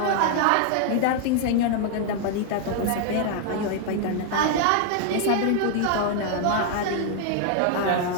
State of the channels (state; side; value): different; both; correlation 0.00